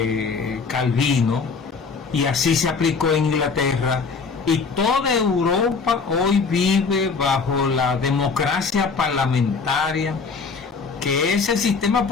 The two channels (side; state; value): right; quieter; 4.9 dB